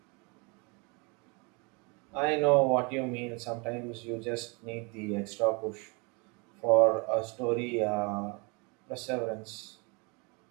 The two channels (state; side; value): quieter; left; 30.8 dB